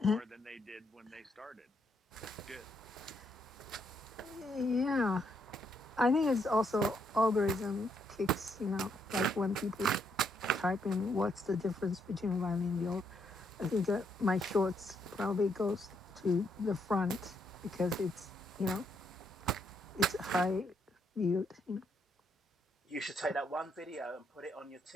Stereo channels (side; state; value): both; normal; correlation 0.75